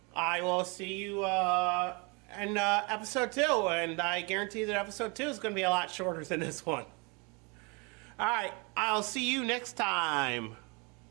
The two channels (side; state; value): left; quieter; 30.8 dB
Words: I will see you in episode 2, and I guarantee that episode 2 is going to be a lot shorter than this one. Alright, I'll see you next time.